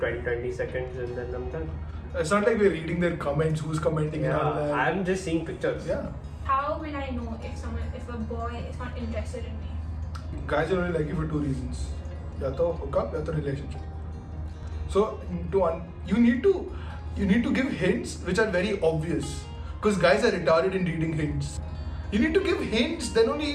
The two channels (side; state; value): both; identical; correlation 1.00